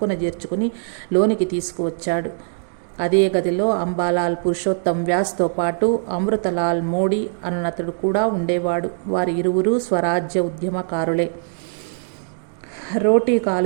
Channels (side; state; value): left; silent; digital silence